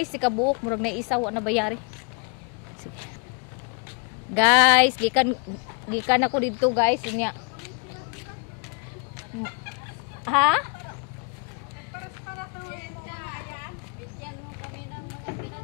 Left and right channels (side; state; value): right; quieter; 35.1 dB